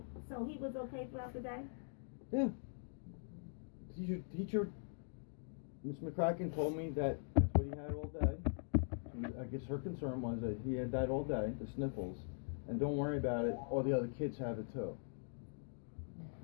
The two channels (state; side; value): silent; right; digital silence